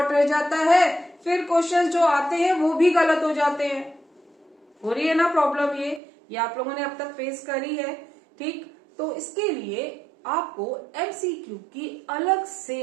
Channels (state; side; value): drops out; left; at 6.0 s